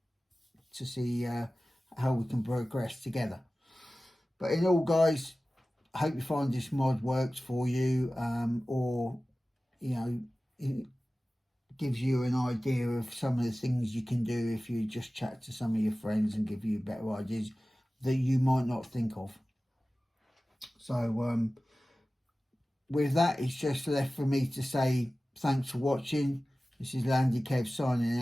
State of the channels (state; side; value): normal; both; correlation 0.96